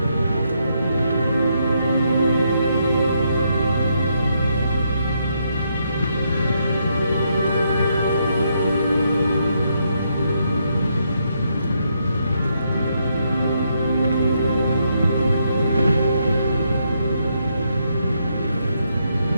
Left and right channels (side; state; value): both; inverted; correlation -0.78